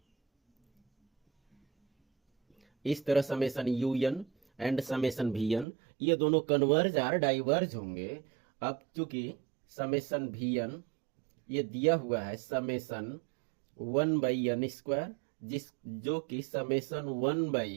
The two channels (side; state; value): left; drops out; at 5.7 s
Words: इस तरह summation u n and summation v n ये दोनों कन्वर्ज और डाइवर्ज होंगे। अब चूंकि समेशन वी एन ये दिया हुआ है समेशन 1/n², जो कि समेशन